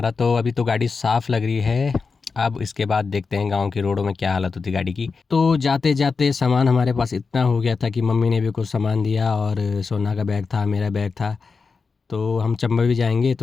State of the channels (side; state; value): right; quieter; 4.8 dB